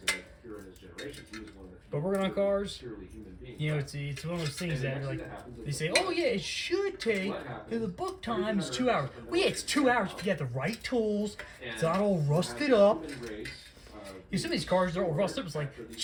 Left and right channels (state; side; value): identical; both; correlation 1.00